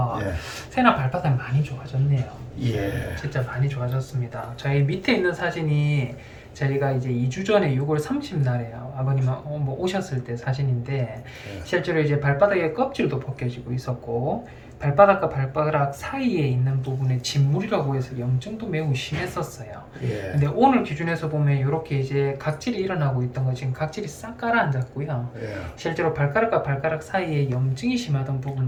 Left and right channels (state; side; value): identical; both; correlation 1.00